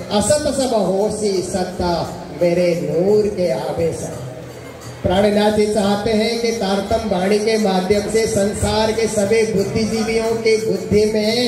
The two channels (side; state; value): both; identical; correlation 1.00